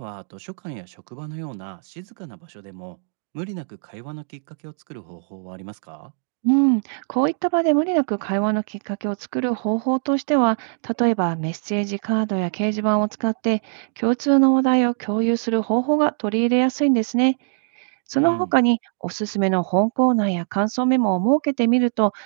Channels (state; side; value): silent; left; 64 dB below the other